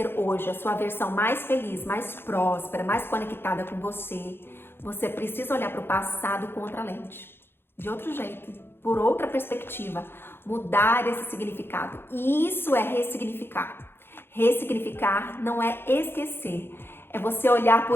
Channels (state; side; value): late; right; 0.11 ms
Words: hoje a sua versão mais feliz, mais próspera, mais conectada com você, você precisa olhar para o passado com outra lente, de outro jeito, por outra perspectiva, mudar esse significado. E isso é ressignificar. Ressignificar não é esquecer, é você olhar